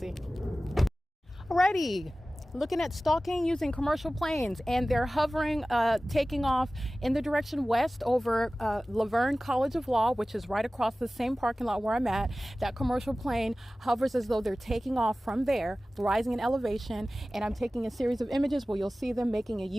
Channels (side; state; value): both; normal; correlation 0.97